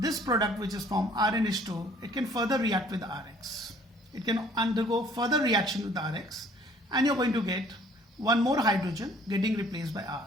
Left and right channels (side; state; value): both; normal; correlation 0.57